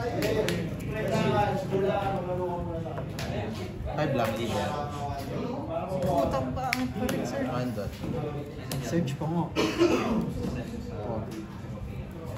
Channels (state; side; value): identical; both; correlation 1.00